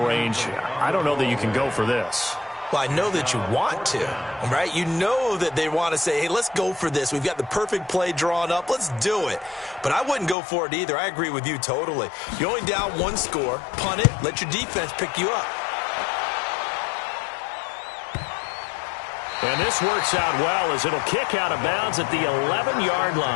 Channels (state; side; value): drops out; right; at 10.4 s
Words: range. I don't know that you can go for this. Well, I know that you want to, right? You know that they want to say, hey, let's go for this. We've got the perfect play drawn up. Let's do it. But I wouldn't go for it either. I agree with you totally. You're only down 1 score. Punt it. Let your defense pick you up. And this works out well as it'll kick out of bounds at the 11-yard